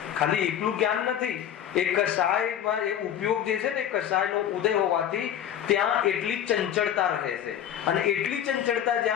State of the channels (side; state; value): right; quieter; 10.1 dB